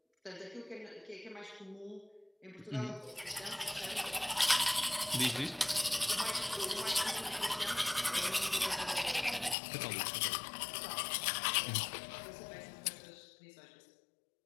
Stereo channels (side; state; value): right; drops out; at 9.6 s